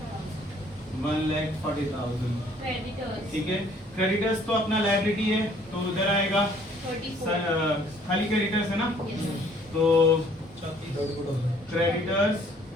1,40,000, ठीक है। क्रेडिटर्स तो अपना लायबिलिटी है तो उधर आएगा, खाली क्रेडिटर्स है ना, तो क्रेडिटर्स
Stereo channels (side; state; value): both; normal; correlation 0.59